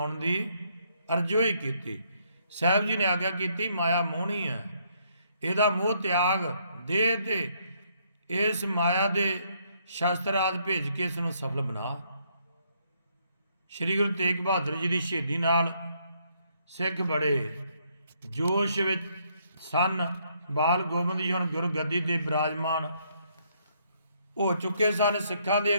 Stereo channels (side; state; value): both; inverted; correlation -0.71